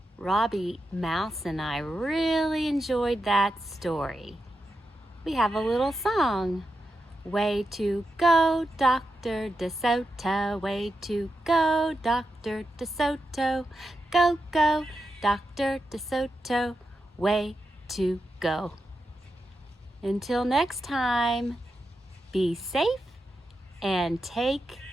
Robbie Mouse and I really enjoyed that story. We have a little song. Way to go, Dr. DeSoto. Way to go, Dr. DeSoto. Go, go, Dr. DeSoto. Way to go. Until next time, be safe and take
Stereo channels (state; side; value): normal; both; correlation 0.88